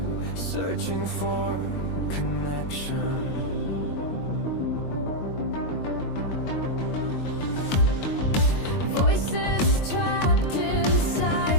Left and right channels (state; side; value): late; right; 22 ms